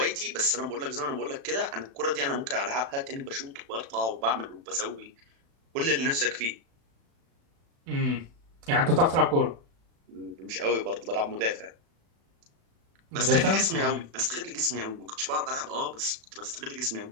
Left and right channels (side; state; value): left; late; 36 ms